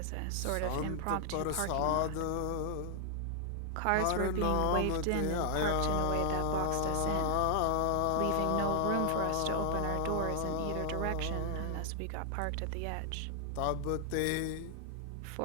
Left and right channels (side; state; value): both; different; correlation 0.00